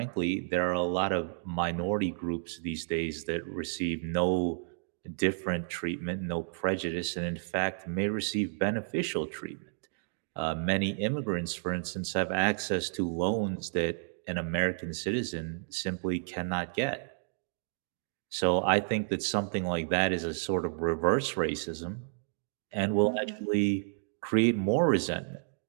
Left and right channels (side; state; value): left; silent; digital silence